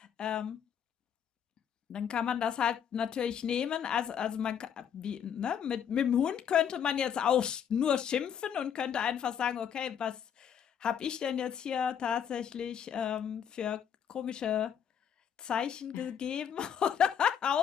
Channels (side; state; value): right; quieter; 8.4 dB